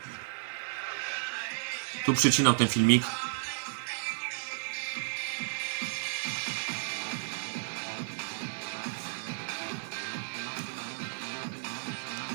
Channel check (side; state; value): left; silent; digital silence